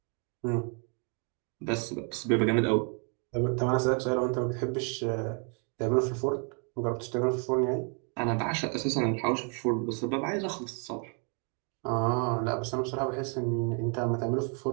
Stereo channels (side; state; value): left; quieter; 39.0 dB